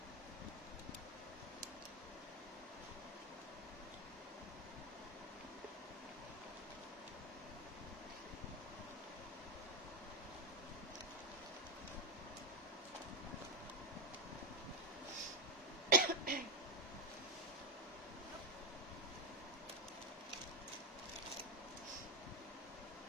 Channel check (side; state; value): both; normal; correlation 0.07